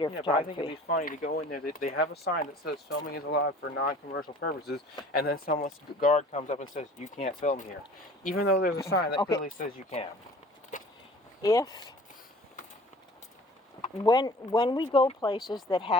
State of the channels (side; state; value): both; normal; correlation 0.47